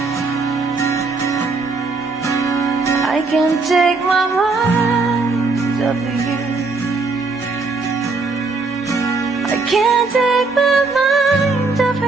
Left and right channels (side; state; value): left; quieter; 3.9 dB